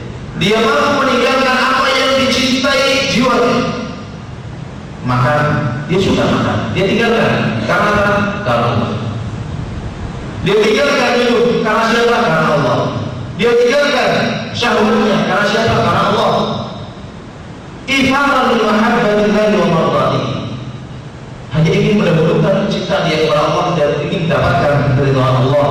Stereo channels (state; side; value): identical; both; correlation 1.00